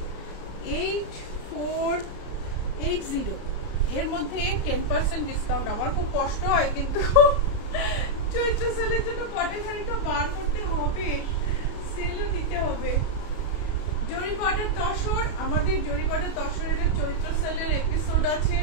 8480 এর মধ্যে 10% ডিসকাউন্ট। আমার খুব কষ্ট হয় কিন্তু চৈত্র সেলের জন্য কটন শাড়িটা বার করতে হবে, সেলও দিতে হবে। জরি বর্ডার তসর, আমাদের জরি বর্ডার তসরের চৈত্র সেলের এপিসোড আছে,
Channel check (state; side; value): late; right; 33 ms